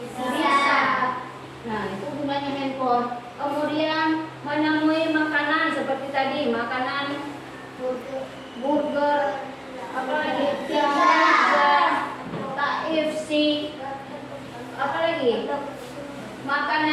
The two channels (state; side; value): identical; both; correlation 1.00